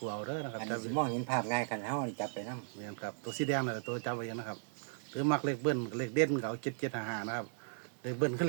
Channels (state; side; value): silent; left; digital silence